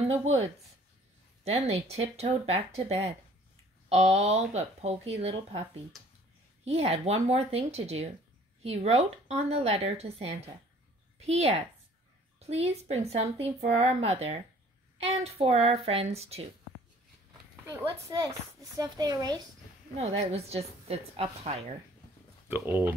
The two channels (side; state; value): both; normal; correlation 0.54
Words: the woods. Then they tiptoed back to bed, all but Poky Little Puppy. He had one more thing to do. He wrote on the letter to Santa, "P.S. Please bring something for our mother and for our friends too." Wait, what's this? The stuff they erased? No, that was just, it's up higher. The